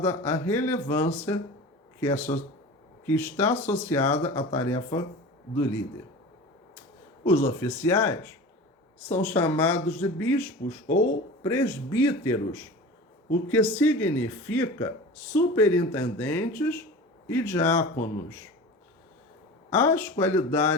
a relevância que está associada à tarefa do líder. Os oficiais são chamados de bispos ou presbíteros, o que significa superintendentes e diáconos. As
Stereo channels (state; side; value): normal; both; correlation 0.35